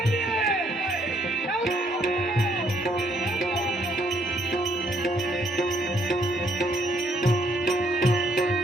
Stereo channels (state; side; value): normal; both; correlation 0.69